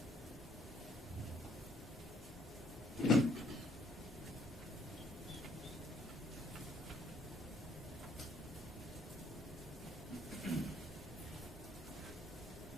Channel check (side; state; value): both; normal; correlation 0.66